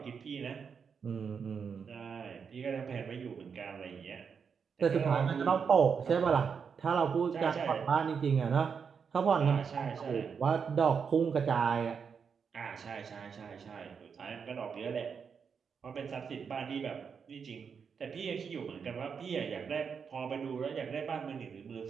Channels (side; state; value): left; quieter; 6.3 dB